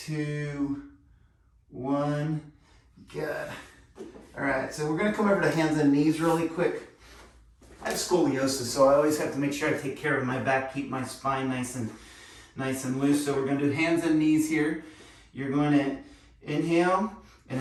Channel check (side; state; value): both; identical; correlation 1.00